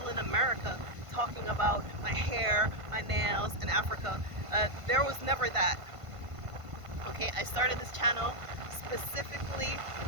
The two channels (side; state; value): left; late; 1.5 ms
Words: in America talking about my hair, my nails, and Africa. There was never that. Okay, I started this channel specifically,